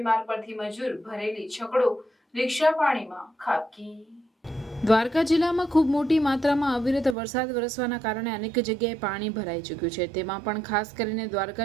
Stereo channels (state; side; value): drops out; left; at 7.2 s